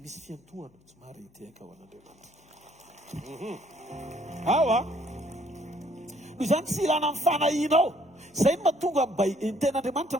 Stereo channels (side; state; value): both; normal; correlation 0.64